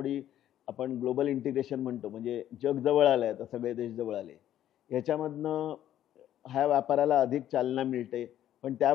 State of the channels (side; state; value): right; quieter; 11.7 dB